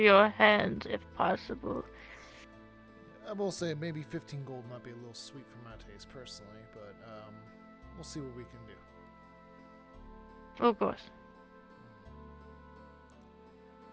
hands if possible. I will say maybe 15 gold might be a little sweet for my taste personally, but we'll see what we can do. Of course.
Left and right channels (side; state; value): both; identical; correlation 1.00